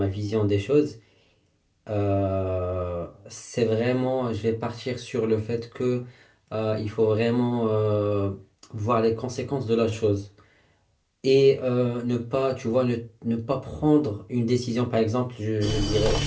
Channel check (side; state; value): both; identical; correlation 1.00